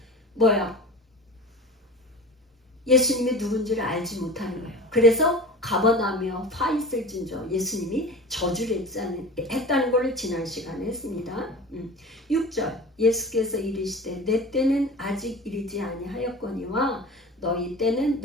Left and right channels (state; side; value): normal; both; correlation 0.35